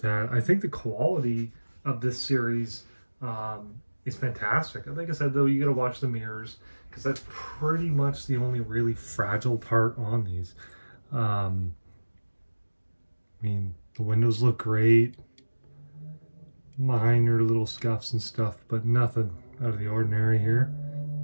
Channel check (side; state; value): both; inverted; correlation -1.00